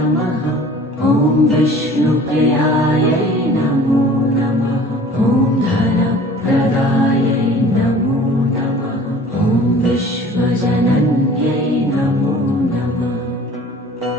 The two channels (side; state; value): both; normal; correlation 0.47